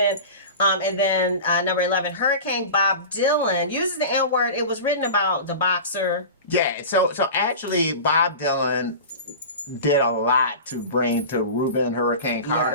And then number 11, Hurricane Bob Dylan uses the N-word. It was written about the boxer. Yeah, so actually Bob Dylan did a lot to bring to Reuben Hurricane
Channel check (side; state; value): both; inverted; correlation -0.32